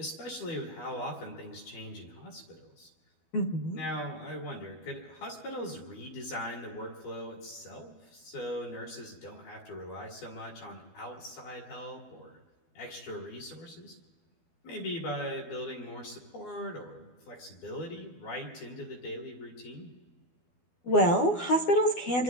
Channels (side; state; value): right; late; 12 ms